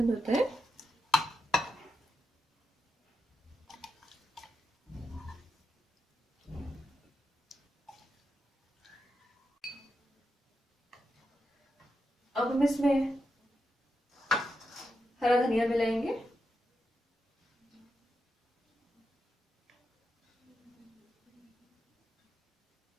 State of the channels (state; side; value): normal; both; correlation 0.86